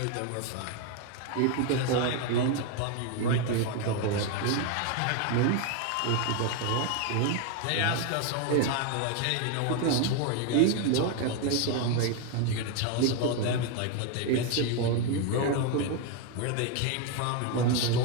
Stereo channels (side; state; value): both; different; correlation 0.01